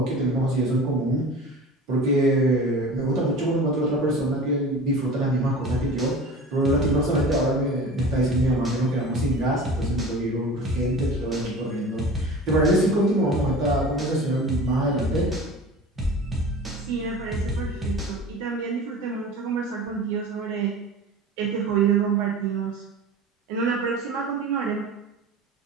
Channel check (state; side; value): normal; both; correlation 0.37